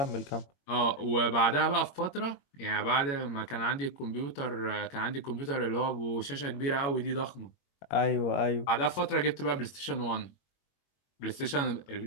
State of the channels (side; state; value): right; late; 21 ms